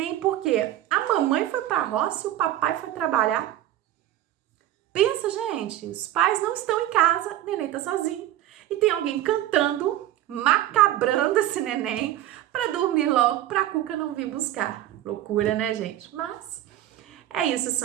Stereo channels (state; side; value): quieter; left; 13.3 dB